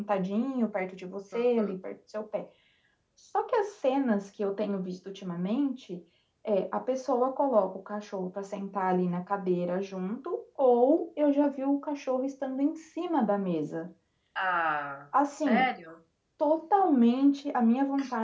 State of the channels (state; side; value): identical; both; correlation 1.00